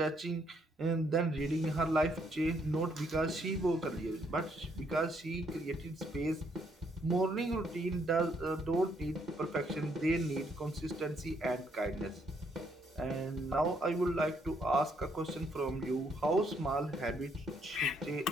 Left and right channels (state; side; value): normal; both; correlation 0.71